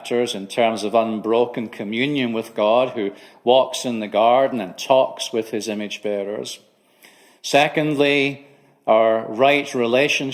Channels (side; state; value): both; identical; correlation 1.00